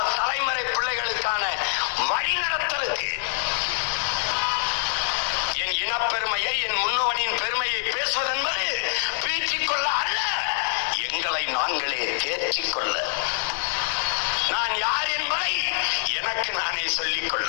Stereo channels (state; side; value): silent; right; 62 dB below the other